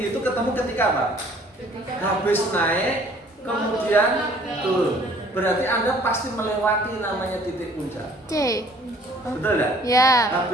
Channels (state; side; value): normal; both; correlation 0.56